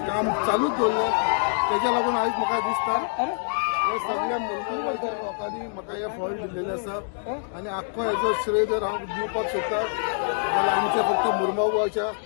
काम चालूच दवरलें तेज्या लागून आयज म्हाका दिसता हे सगळ्या मुर्मुगांवच्या लोकांनी म्हाका हे फळ दिल्लेलें आसा आनी आख्खो हेजो श्रेय जर हांव दिवपाक सोदता जाल्यार आमच्या फक्त मुर्मुगांवच्या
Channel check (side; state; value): right; silent; digital silence